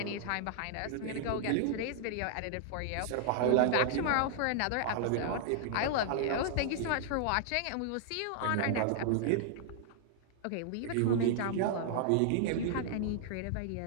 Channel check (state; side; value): different; both; correlation -0.01